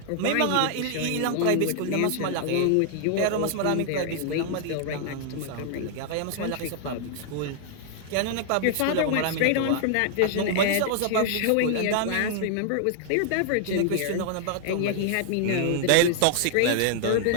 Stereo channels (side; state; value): both; different; correlation -0.01